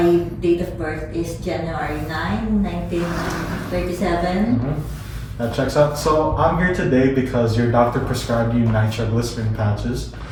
date of birth is January 9, 1937. That checks out. So I'm here today because your doctor prescribed you nitroglycerin patches,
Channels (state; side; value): identical; both; correlation 1.00